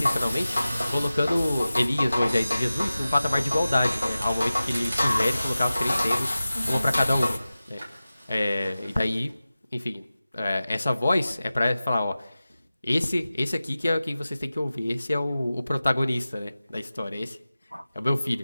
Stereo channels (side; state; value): both; inverted; correlation -0.96